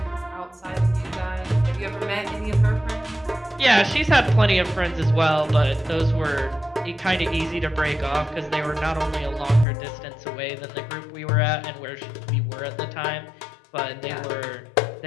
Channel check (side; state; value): right; drops out; at 9.7 s